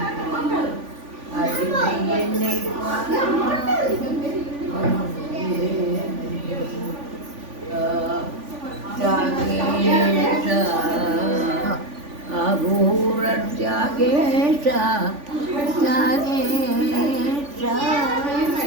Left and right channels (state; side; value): late; left; 3.5 ms